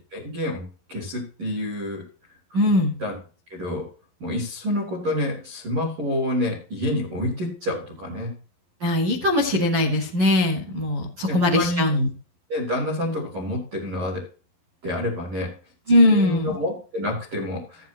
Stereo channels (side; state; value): left; late; 11 ms